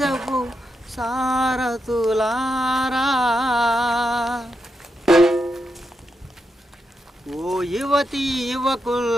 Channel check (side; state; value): both; normal; correlation 0.84